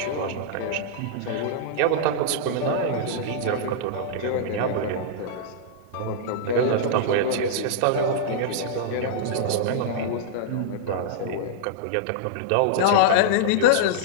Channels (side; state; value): both; different; correlation -0.02